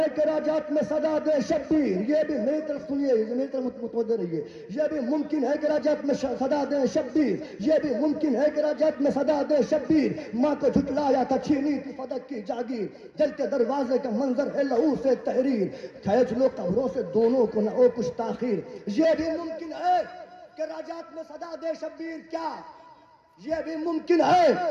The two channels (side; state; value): both; identical; correlation 1.00